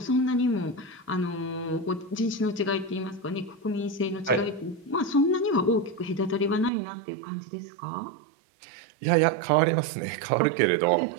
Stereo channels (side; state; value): left; drops out; at 6.7 s